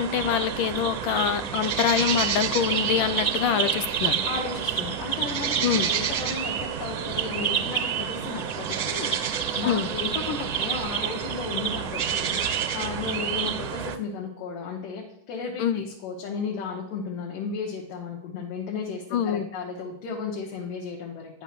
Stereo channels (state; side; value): late; right; 11 ms